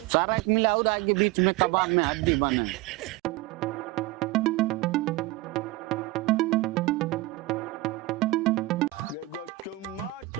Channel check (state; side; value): quieter; left; 19.0 dB